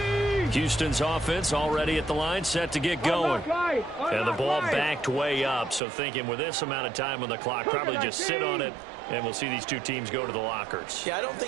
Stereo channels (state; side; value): drops out; left; at 5.8 s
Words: Houston's offense already at the line, set to get going. And the ball backed way up, so thinking with this amount of time on the clock, probably just sit on it, and we'll see these two teams go to the lockers. Yeah, I don't